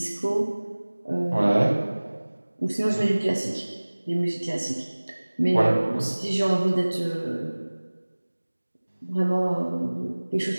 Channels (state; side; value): inverted; both; correlation -1.00